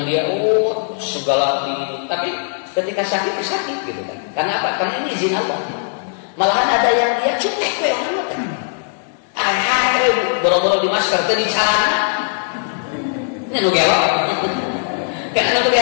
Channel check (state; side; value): silent; right; digital silence